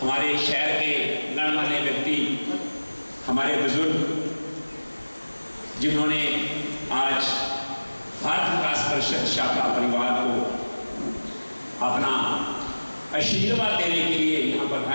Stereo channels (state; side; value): inverted; both; correlation -1.00